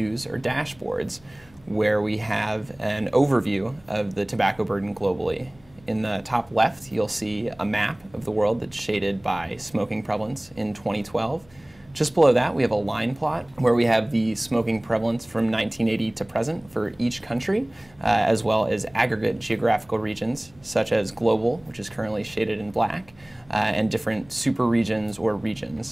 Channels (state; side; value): noise; left; hum, 28 dB below the sound